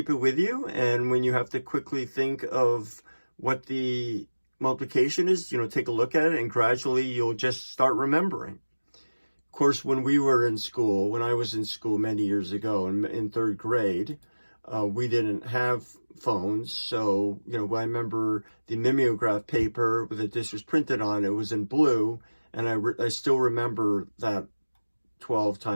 it with you. And when you have to quickly think of what the multiplication is, take a look at it, and gradually you'll just start remembering. Of course, when I was in school many years ago in third grade, we didn't have phones. So, I remember the mimeograph paper that this was printed on, it was in blue. And I still remember that 12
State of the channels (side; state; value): both; inverted; correlation -1.00